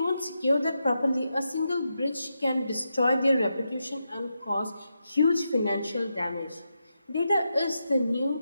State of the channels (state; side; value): inverted; both; correlation -0.86